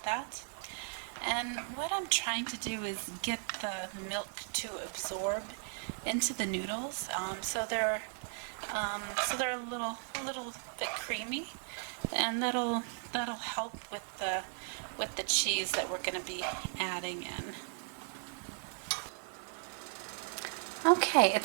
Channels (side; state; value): left; silent; 53 dB below the other